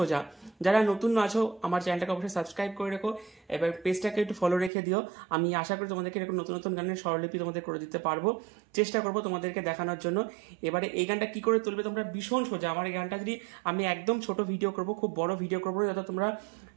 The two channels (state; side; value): drops out; left; at 4.7 s